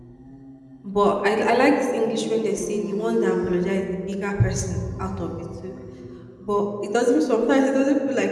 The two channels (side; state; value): both; identical; correlation 1.00